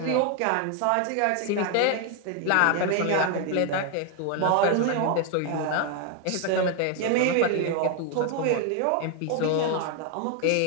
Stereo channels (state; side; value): different; both; correlation 0.01